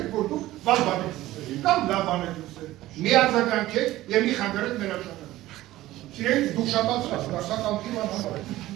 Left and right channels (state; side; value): quieter; left; 16.1 dB